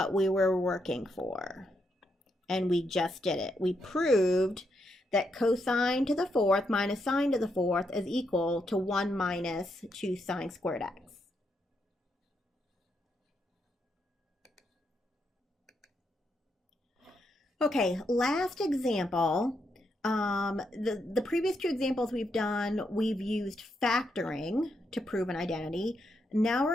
we were working for. And we just did it. We proved that cosine to the fourth minus sine to the fourth is equal to 1 minus 2 sine squared x. Okay, last example. The previous two examples we've done, we've used factoring to prove an identity. Now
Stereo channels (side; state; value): both; normal; correlation 0.80